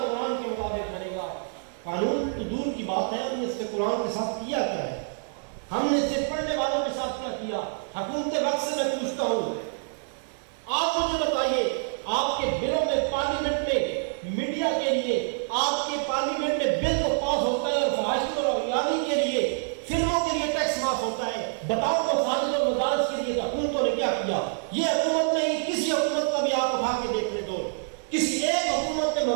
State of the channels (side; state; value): left; silent; digital silence